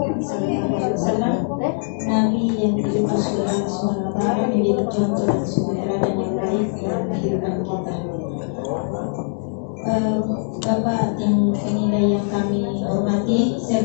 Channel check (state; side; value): silent; right; 65 dB below the other